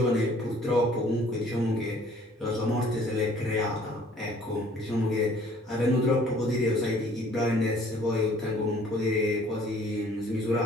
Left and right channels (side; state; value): both; normal; correlation 0.56